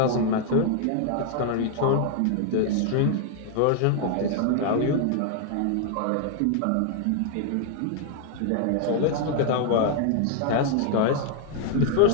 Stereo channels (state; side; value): different; both; correlation 0.00